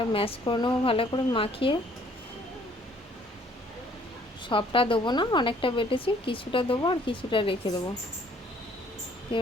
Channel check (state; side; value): normal; both; correlation 0.60